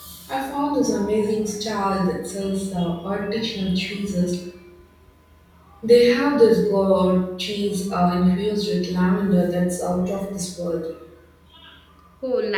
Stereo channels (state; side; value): identical; both; correlation 1.00